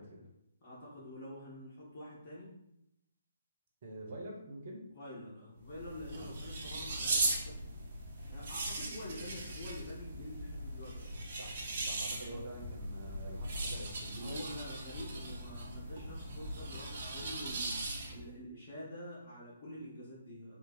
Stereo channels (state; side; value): inverted; both; correlation -0.70